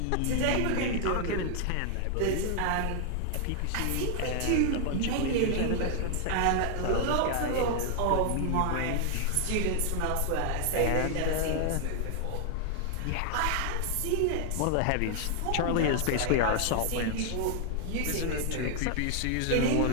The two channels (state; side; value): different; both; correlation 0.00